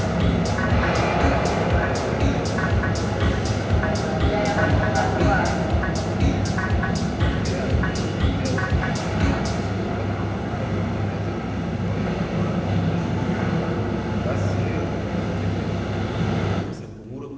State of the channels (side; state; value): both; identical; correlation 1.00